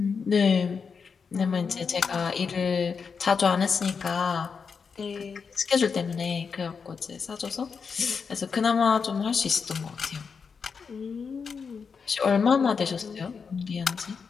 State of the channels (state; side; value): quieter; right; 5.7 dB